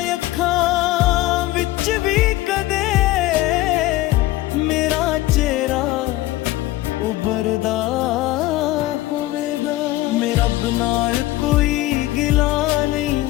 ਅੱਖਾਂ ਵਿੱਚ ਵੀ ਕਦੇ ਮੇਰਾ ਚਿਹਰਾ ਉਭਰਦਾ ਹੋਵੇਗਾ। ਮੈਂ ਰੱਬ ਨਾਲ ਕੋਈ ਗਿਲਾ ਨਹੀਂ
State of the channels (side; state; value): right; quieter; 17.1 dB